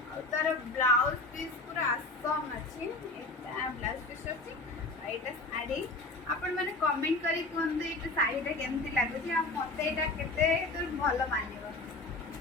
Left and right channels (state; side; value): quieter; right; 3.1 dB